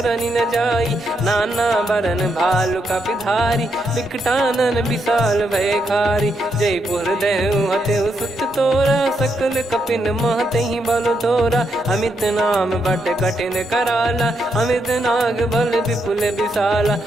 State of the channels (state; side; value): normal; both; correlation 0.80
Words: न जाई। नाना बरन भालु कपिधारी, विकटानन विशाल भयकारी। जयपुर देहु हतेउ सुत तोरा, सकल कपिन महतहि बल तोरा। अमित नाम बट कठिन कराला, अमित नाग बल विपुल विशाला।